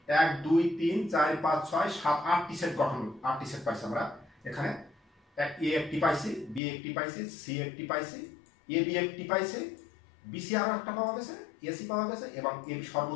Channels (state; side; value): drops out; right; at 6.6 s